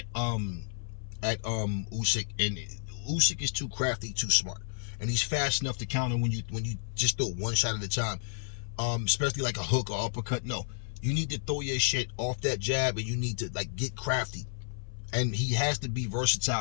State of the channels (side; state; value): right; silent; 57 dB below the other